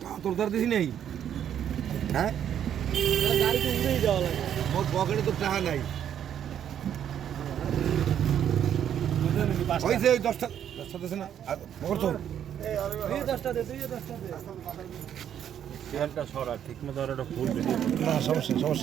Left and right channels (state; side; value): quieter; left; 9.6 dB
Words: তোর দার দিছি নাই হ্যাঁ গাড়ি তো উড়েই যাওয়া লাগে মোর পকেটে তো টাকা নাই ওই যে 10 টা দিছে না মোর তো তুই 10টা দে তুই 10টা দে চেয়ারটা সরা ঠিক মতো আর একটা ফুল না